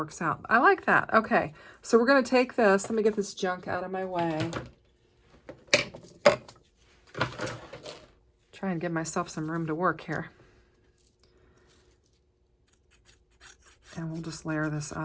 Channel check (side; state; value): both; identical; correlation 1.00